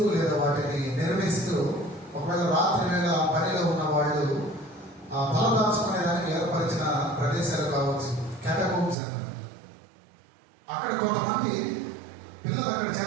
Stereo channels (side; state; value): left; drops out; at 9.0 s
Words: లేదా వాటిని నిర్మిస్తూ ఒకవేళ రాత్రి వేళ ఆ పనిలో ఉన్న వాళ్ళు ఆ తలదాచుకునేదానికి ఏర్పరిచిన ప్రదేశాలు కావచ్చు, క్యాటకోమ్స్ అంటారు. అక్కడ కొంతమంది పిల్లలు అక్కడ